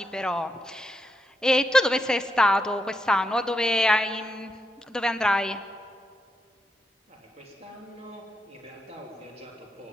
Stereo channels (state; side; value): normal; both; correlation 0.83